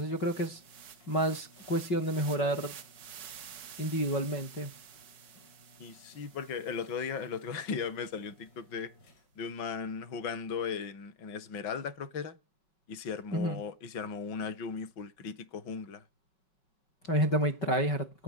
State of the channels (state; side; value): late; right; 5.4 ms